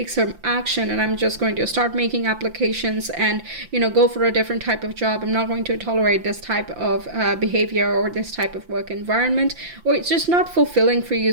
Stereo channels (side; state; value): left; late; 5.8 ms